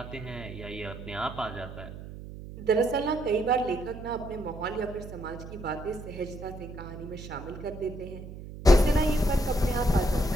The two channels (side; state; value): right; noise; hum, 12 dB below the sound